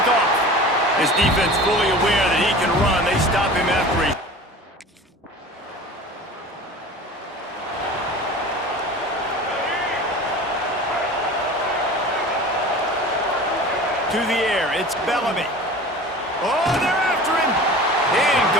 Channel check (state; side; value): normal; both; correlation 0.38